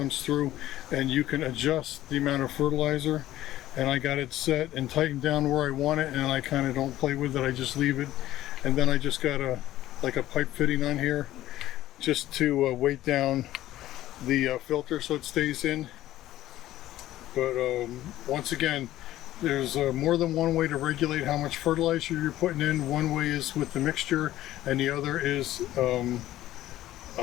through and you can adjust the amount of fertilizer, and I got it set and tightened down where I want it, and I kind of don't play with it. I just leave it, and then I just got a pipe fitting on here just to weight down the filter so it stays in. But once again, there's more than one way to regulate how much fertilizer you're putting in. One way is with the mixture, and the other is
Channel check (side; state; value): right; quieter; 14.4 dB